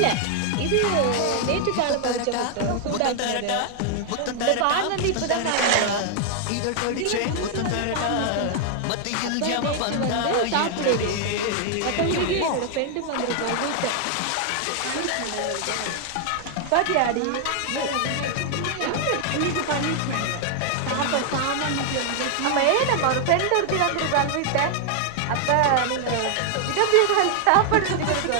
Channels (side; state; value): both; different; correlation 0.00